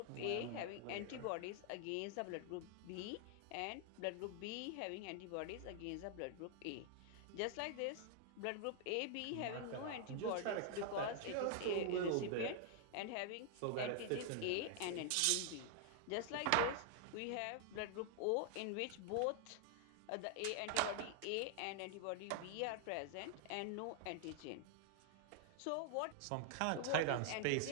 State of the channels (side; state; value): both; different; correlation 0.00